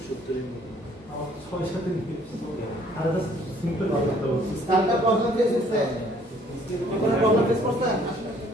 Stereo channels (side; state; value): both; normal; correlation 0.59